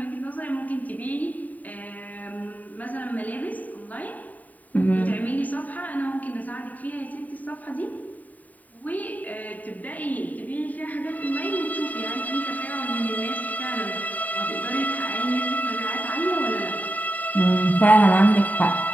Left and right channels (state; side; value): late; right; 0.076 ms